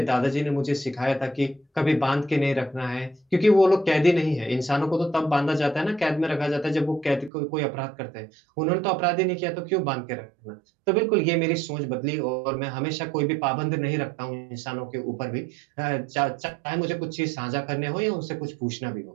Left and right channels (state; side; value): drops out; left; at 7.3 s